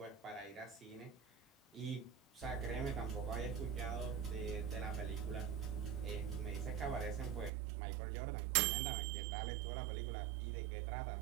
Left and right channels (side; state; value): left; drops out; at 7.5 s